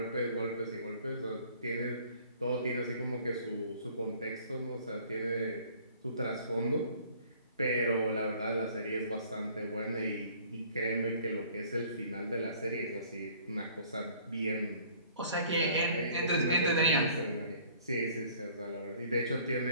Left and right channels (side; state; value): both; inverted; correlation -0.55